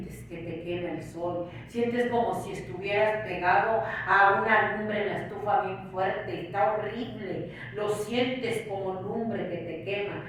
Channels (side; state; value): both; identical; correlation 1.00